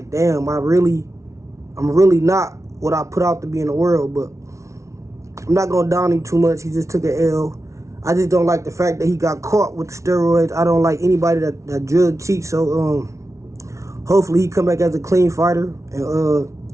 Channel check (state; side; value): late; left; 0.14 ms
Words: damn, I'm really not what I put out to be in the world, but I'm not going to down him too much. He just took an L. I just don't like the fact that he got caught with the steroids. I don't like anybody that drug cheats, so hopefully he come back as a clean fighter,